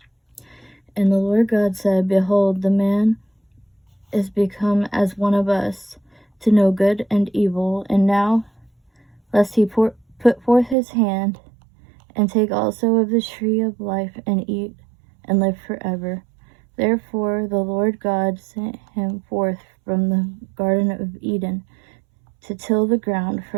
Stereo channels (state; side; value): drops out; left; at 10.8 s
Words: And the Lord God said, Behold, the man is become as one of us, to know good and evil. And now, lest he put forth his hand, and take also of the tree of life, and eat, and live forever. Therefore the Lord God sent him forth from the Garden of Eden, to till the ground